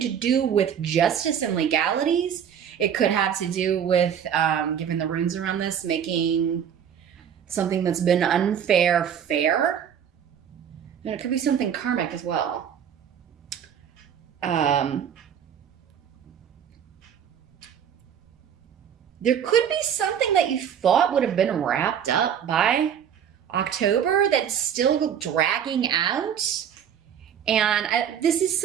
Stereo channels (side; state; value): left; quieter; 8.6 dB